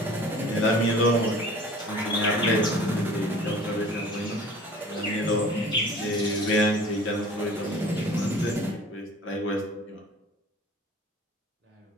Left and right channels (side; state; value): both; normal; correlation 0.45